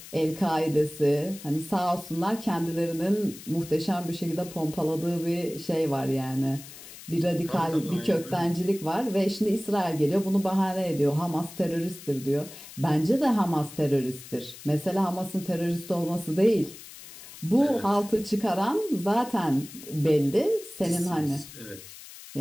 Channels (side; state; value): left; noise; hiss, 16 dB below the sound